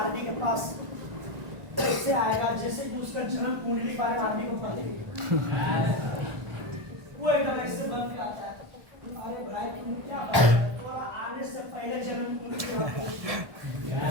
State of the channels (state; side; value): late; left; 1.5 ms